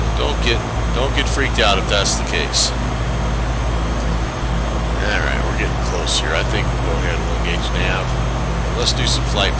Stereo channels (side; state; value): both; identical; correlation 1.00